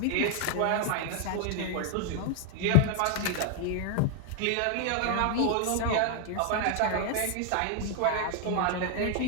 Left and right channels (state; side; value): different; both; correlation 0.00